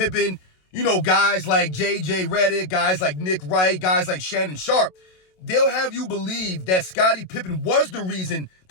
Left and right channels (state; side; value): late; right; 27 ms